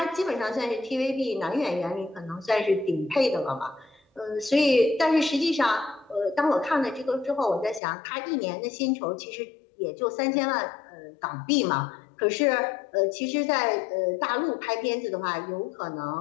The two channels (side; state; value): right; drops out; at 7.8 s